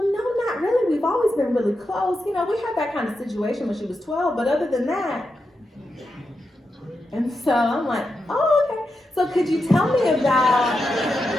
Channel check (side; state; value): both; normal; correlation 0.87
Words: no, not really. We've always been really close. You know, we had that kind of situation when she was 12, but other than that. And so I'm like, oh, okay. So could you tell me about